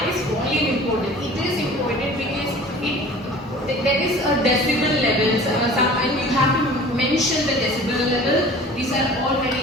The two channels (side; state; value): both; normal; correlation 0.44